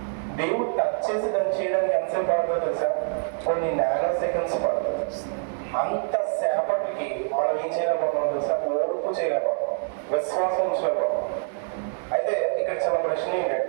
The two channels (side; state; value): left; silent; 61 dB below the other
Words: దేవుడు టచ్ చేసి దాన్ని చేయడానికి ఎంతసేపు పడుతుందో తెలుసా? కొన్ని నానో సెకండ్స్ పడుతుంది. అంత సేపటికి మనం ఏం చేయలేకపోతున్నాం తెలుసా? ఓర్పు చేయలేకపోతున్నాం, విశ్వాసం ఉంచలేకపోతున్నాం. అయితే ఇక్కడ చిన్న ప్రశ్న